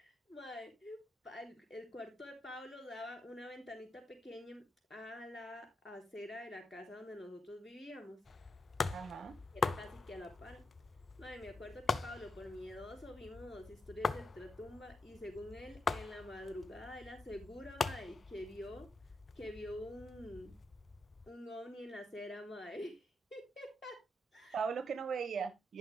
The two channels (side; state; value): both; normal; correlation 0.83